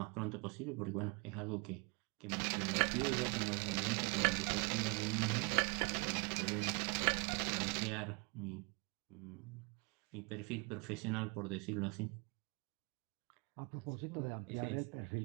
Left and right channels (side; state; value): left; quieter; 31.7 dB